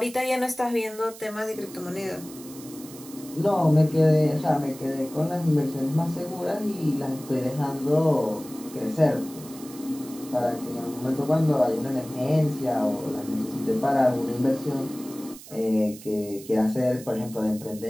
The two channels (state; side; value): noise; right; hiss, 17 dB below the sound